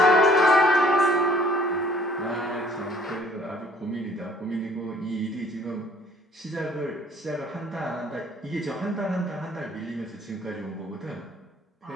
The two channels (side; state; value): both; normal; correlation 0.57